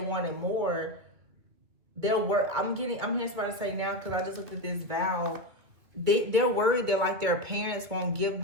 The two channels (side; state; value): left; late; 2.3 ms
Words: more, they'll work. I'm hearing somebody say now, because I just looked at this vow. They're worried that like their parents won't give